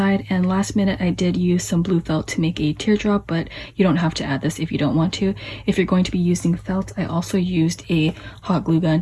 and last minute I did use some blue felt to make a teardrop, but you don't have to add this if you don't want to. If you're going to be using felt, I also used a hot glue gun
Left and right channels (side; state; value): both; identical; correlation 1.00